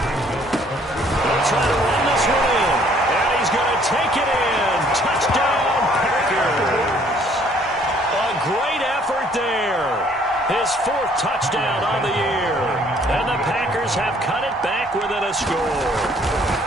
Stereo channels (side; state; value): both; normal; correlation 0.61